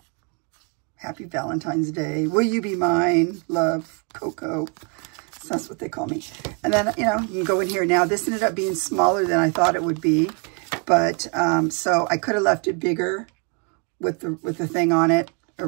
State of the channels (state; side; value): quieter; left; 36.3 dB